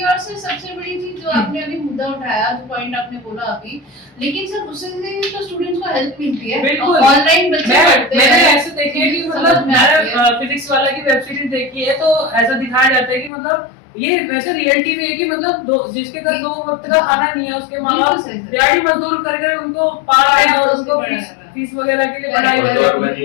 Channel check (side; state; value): right; drops out; at 13.3 s